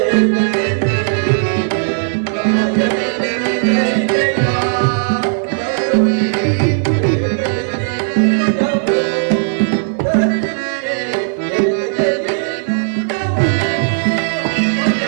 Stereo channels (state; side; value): silent; left; digital silence